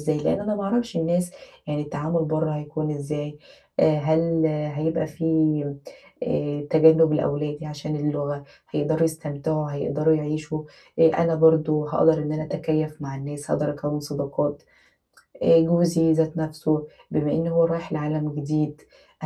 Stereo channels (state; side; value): identical; both; correlation 1.00